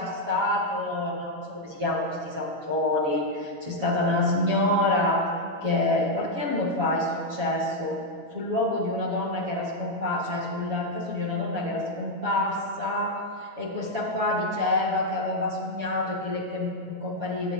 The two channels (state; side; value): late; left; 7.1 ms